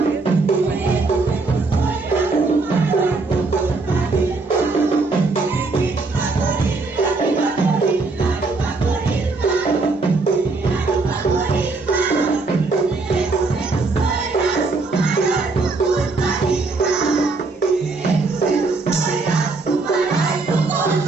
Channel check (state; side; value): quieter; left; 3.8 dB